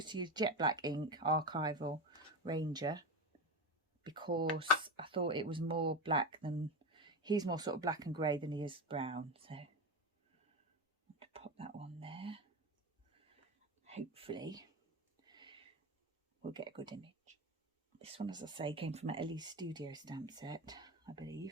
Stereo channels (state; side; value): normal; both; correlation 0.21